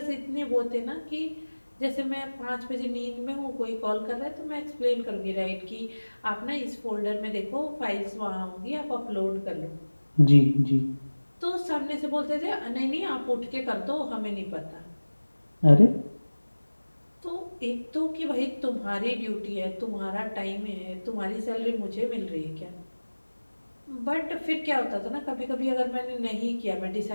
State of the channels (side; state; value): both; inverted; correlation -1.00